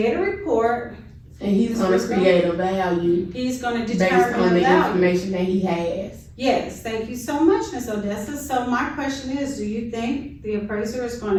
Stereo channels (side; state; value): both; identical; correlation 1.00